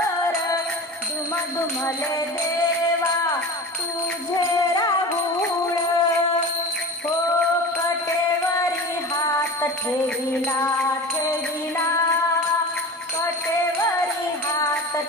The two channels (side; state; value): both; normal; correlation 0.33